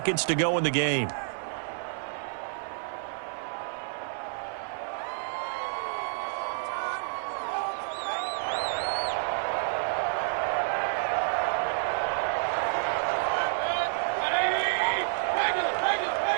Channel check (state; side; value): silent; left; 58 dB below the other